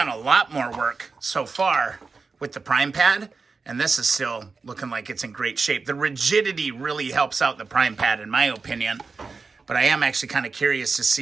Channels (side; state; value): left; quieter; 4.5 dB